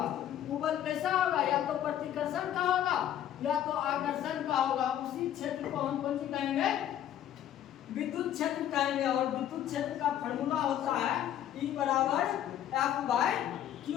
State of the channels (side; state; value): right; quieter; 11.1 dB